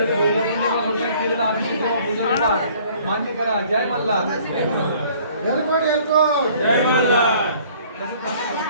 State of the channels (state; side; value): inverted; both; correlation -0.55